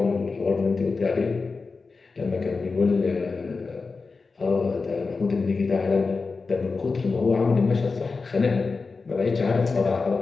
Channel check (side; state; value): right; quieter; 4.3 dB